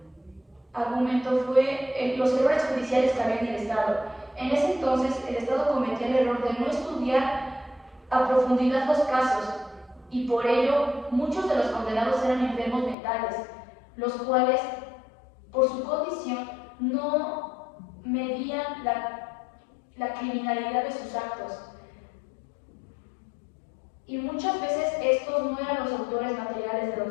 argumento fue los errores judiciales que había en el Estado. En ese entonces, el Estado cometía el error de no estudiar a profundidad los casos, y por ello muchos de los condenados eran enfermos mentales, los cuales, por su condición, no medían la criminalidad de sus actos. Y muchas veces estos no eran los autores materiales de los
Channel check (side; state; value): right; drops out; at 13.0 s